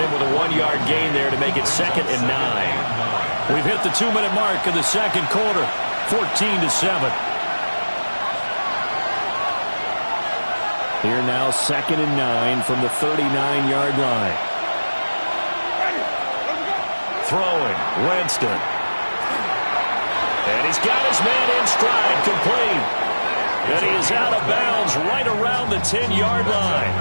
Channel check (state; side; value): inverted; both; correlation -1.00